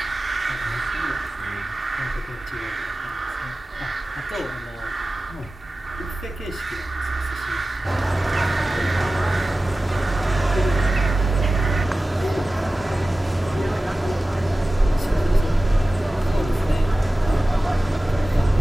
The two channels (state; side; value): normal; both; correlation 0.96